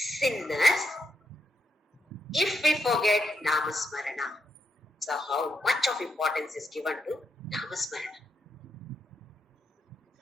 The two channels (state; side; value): normal; both; correlation 0.82